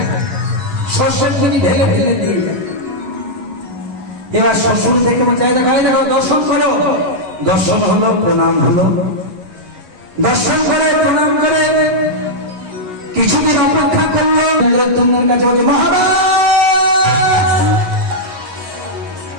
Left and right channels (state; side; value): late; left; 11 ms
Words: শ্বশুর তিনি ঢেলে ঢেলে দিয়ে এবার শ্বশুর দেখে বলছে দেখো দর্শন করো দর্শন হলো প্রণাম হলো দর্শন করে প্রণাম করে কিছুদিন অপেক্ষা করলো ইন্দ্রদ্যুম্নের কাছে বলছে মহারাজ